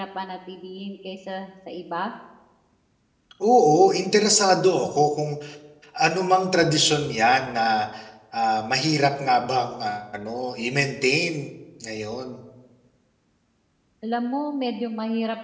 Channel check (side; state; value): both; identical; correlation 1.00